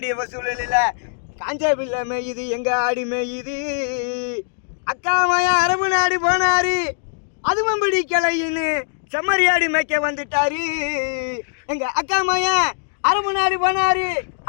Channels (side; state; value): right; silent; digital silence